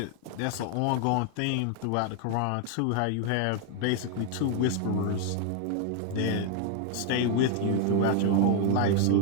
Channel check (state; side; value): different; both; correlation 0.00